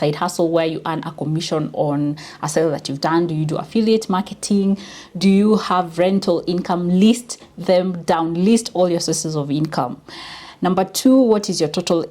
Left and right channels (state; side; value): identical; both; correlation 1.00